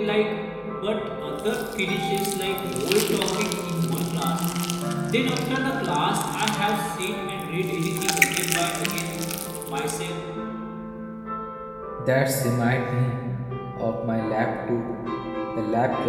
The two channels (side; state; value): both; identical; correlation 1.00